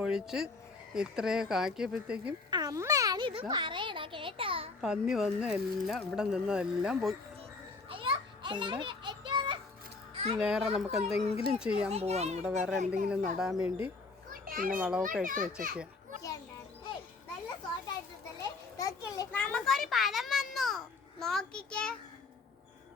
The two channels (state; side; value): quieter; right; 4.0 dB